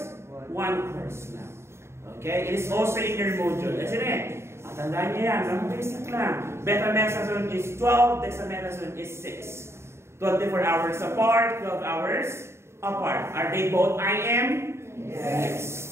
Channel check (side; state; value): left; late; 0.13 ms